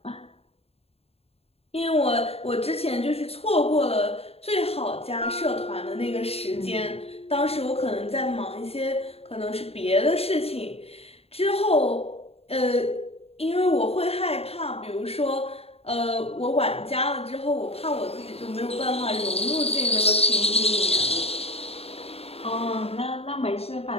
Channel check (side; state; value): right; late; 0.29 ms